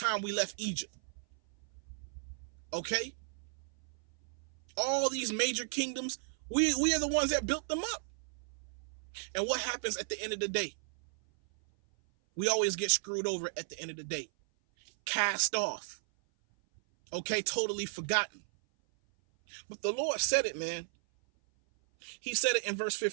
we left Egypt. Okay? All these major kingdoms, we are the ones that built them up. And what happens at the end of the day? We always get screwed over at the end of the day. Cast off. Okay? Totally forgotten. But the Lord said it, man. He said it in verse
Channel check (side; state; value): left; silent; 55 dB below the other